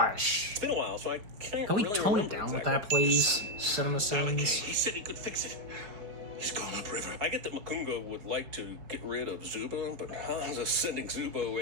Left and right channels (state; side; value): late; left; 5.1 ms